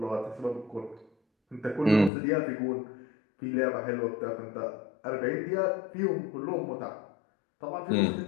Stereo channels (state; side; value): drops out; right; at 2.1 s